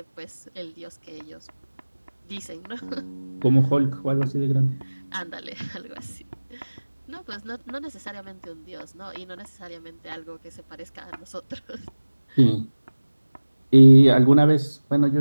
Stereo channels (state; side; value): inverted; both; correlation -1.00